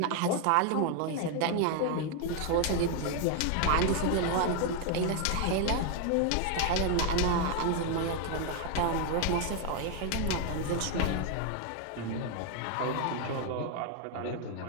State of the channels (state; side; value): different; both; correlation 0.01